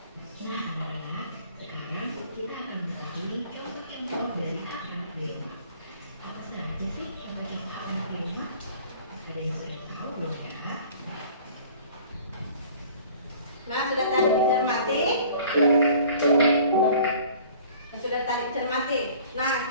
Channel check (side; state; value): both; inverted; correlation -0.50